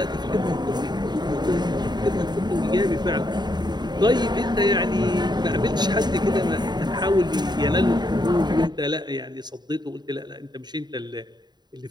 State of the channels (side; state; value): left; late; 0.21 ms